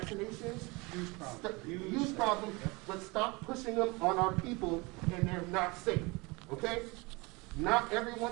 use problems, but stop pushing them on our people and they're not safe. Okay? Not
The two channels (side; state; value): left; quieter; 25.8 dB